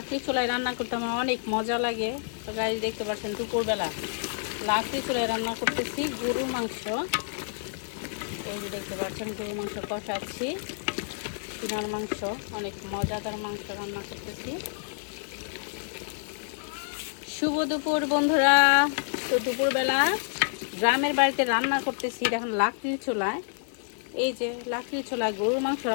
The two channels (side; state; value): right; silent; digital silence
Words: চুলায় রান্না করতে আমার অনেক মজা লাগে। তো গাইস দেখতে পাচ্ছেন দুপুরবেলা লাকড়ি চুলায় রান্না করতেছি গরুর মাংস। এই যে দেখতে পাচ্ছেন গরুর মাংস কষাচ্ছি, সিনার মাংস, অনেক মজাদার মাংস রান্না করতেছি। শুভ দুপুর বন্ধুরা। তো দুপুরবেলা গ্রামের বাড়িতে রান্না করতেছি, এখন লাকড়ির চুলায়। এই যে লাকড়ির চুলায় গরুর মাংস